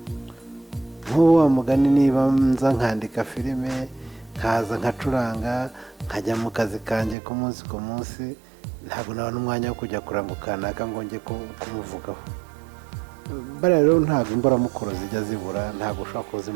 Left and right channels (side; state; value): left; drops out; at 7.2 s